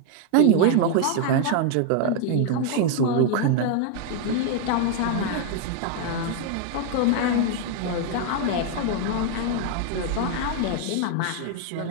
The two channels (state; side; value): different; both; correlation 0.01